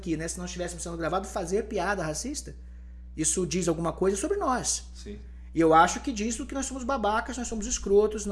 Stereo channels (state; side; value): identical; both; correlation 1.00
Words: né? Se não estivéssemos sendo gravados, fazer piada racista. Isso diz alguma coisa sobre nós. Sim. E eu acho que diz que nós somos babacas, nós somos escrotos,